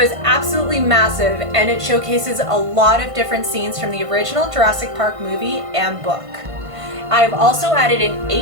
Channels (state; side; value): late; left; 1.5 ms